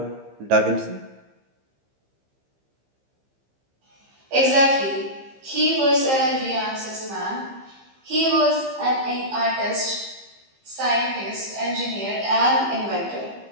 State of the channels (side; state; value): left; late; 15 ms